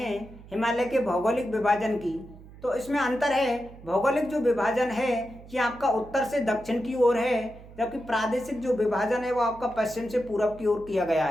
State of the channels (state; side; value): noise; right; hum, 19 dB below the sound